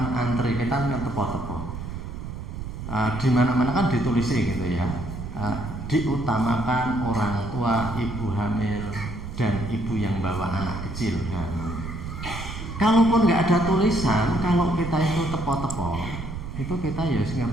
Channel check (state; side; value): noise; right; rumble, 8 dB below the sound